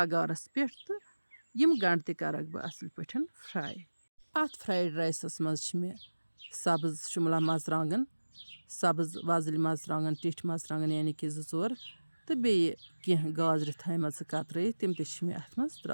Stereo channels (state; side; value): inverted; both; correlation -1.00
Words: पे तो यम गंड तक बह असल पे फ्राई। अत फ्राइड राइसस मज मे सब्ज शिमला मरचांगन सब्ज वजल मरचांगन टिठ मरचांगन यानी कि 2-4 तो बे कह गाजर थम कतरत तम मे अत मज